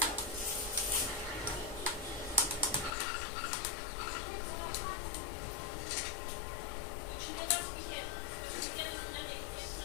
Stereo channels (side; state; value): right; drops out; at 3.0 s